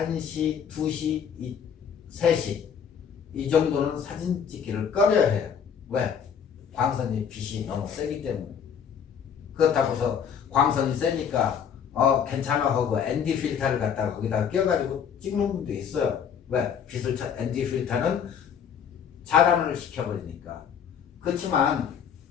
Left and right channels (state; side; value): quieter; right; 7.7 dB